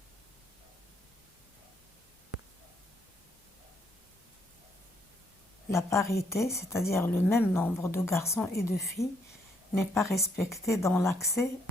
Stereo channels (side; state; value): both; normal; correlation 0.72